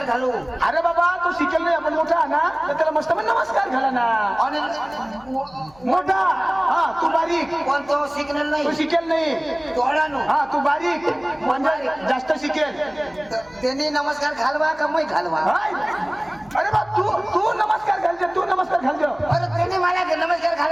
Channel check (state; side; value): noise; left; hum, 26 dB below the sound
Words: घालू. अरे बाबा तू शिकेल नाही आपण मोठा ना. तर त्याला मस्त पण नमस्कार घाला ना. अनिल मोठा. हा तू बारीक. कोण तो शिकणार तू नाही. शिकेल नाही. तोडानो हा तू बारीक म्हणजे जास्त शिकेल. त्यांनी नमस्कार घालवा का moi घालवा. हाय. अरे बा तू नमस्कार घालजो. तू नमस्कार घालजो. अरे त्यांनी मला नमस्कार